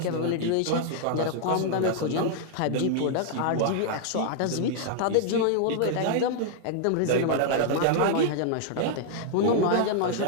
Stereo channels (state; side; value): different; both; correlation -0.01